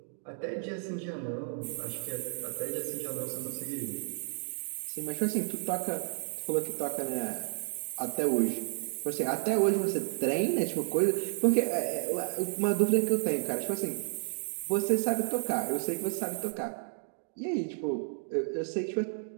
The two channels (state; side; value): silent; left; digital silence